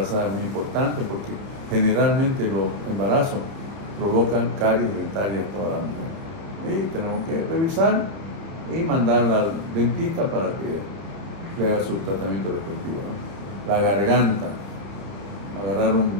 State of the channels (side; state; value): left; late; 30 ms